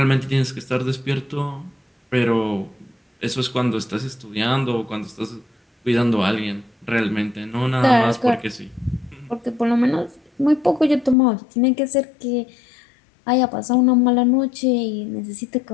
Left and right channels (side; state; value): right; drops out; at 11.2 s